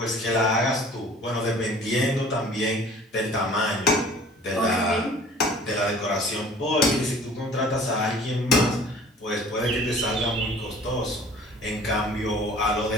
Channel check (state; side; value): normal; both; correlation 0.48